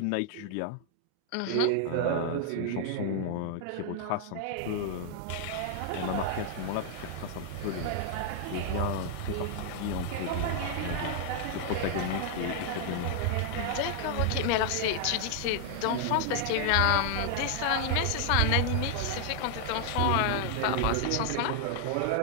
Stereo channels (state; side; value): different; both; correlation 0.00